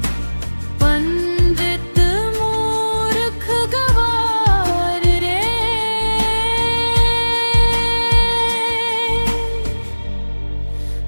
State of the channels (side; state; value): both; inverted; correlation -1.00